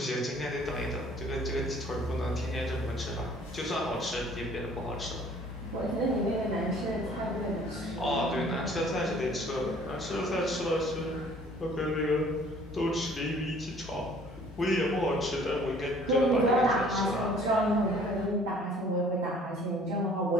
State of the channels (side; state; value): both; normal; correlation 0.55